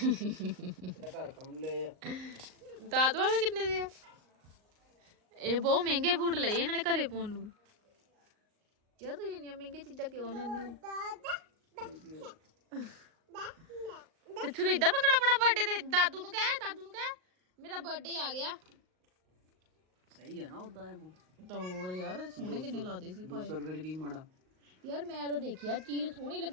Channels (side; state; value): left; late; 38 ms